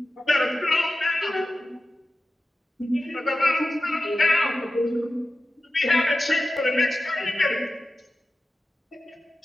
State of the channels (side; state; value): both; normal; correlation 0.93